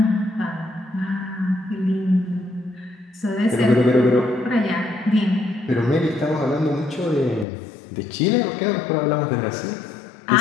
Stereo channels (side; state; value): right; drops out; at 7.5 s